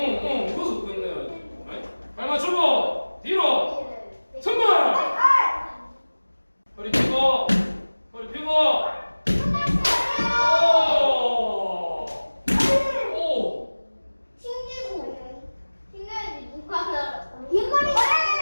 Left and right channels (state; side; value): inverted; both; correlation -1.00